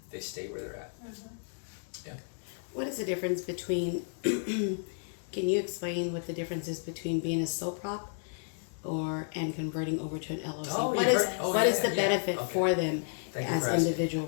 They stay where they're at. Yeah. What is the difference between, can you explain what the difference is between being a sole prop and converting over to an LLC? Oh, What you've is heard- oh, what is yeah, the yeah. benefit Okay. for them Thank you as for asking. individual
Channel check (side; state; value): right; silent; digital silence